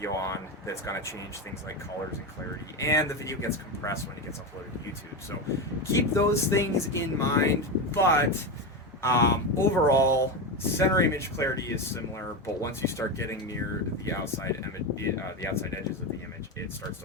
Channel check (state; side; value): normal; both; correlation 0.16